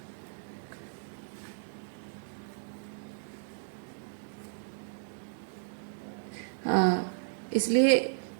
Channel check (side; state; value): left; silent; digital silence